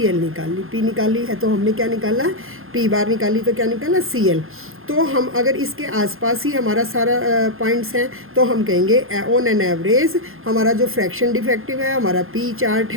एल निकाल ली। पी निकाली है तो हमने क्या निकाला, पी बार निकाली तो क्या निकाला, सी एल। तो हम अगर इसके आसपास ही हमारा सारा पॉइंट्स हैं तो हम कहेंगे ऑन एन एवरेज हमारा जो फ्रैक्शन डिफेक्टिव है, हमारा पी चार्ट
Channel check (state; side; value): late; left; 0.60 ms